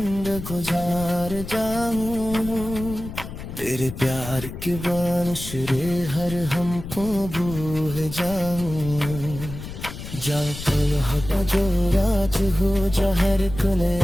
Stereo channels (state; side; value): noise; left; rumble, 10 dB below the sound